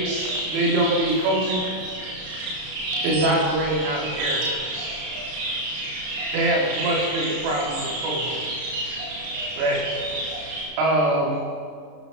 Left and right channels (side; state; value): left; late; 33 ms